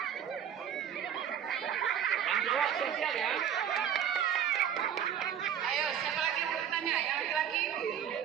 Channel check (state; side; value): quieter; left; 9.1 dB